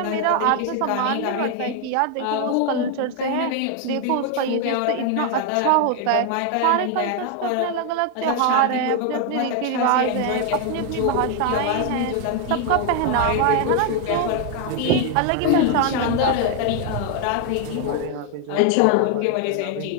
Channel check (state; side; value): different; both; correlation 0.01